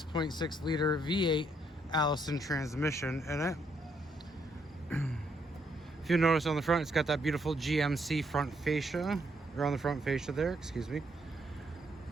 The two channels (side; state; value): both; normal; correlation 0.73